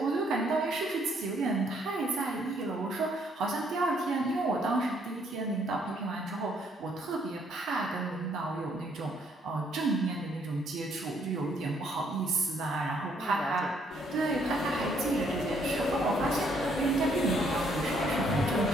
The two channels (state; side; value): normal; both; correlation 0.68